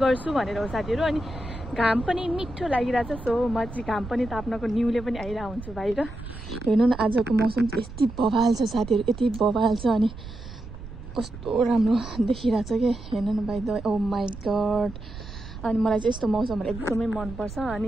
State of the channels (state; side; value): noise; right; rumble, 13 dB below the sound